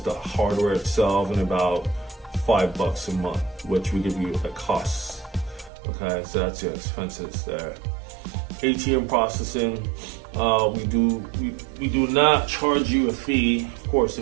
hardware itself, and about $5 a month, which we give you at cost. Okay, so that's your expenses there. ATM processing, we do not charge you a fee. Of course,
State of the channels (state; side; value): drops out; left; at 5.7 s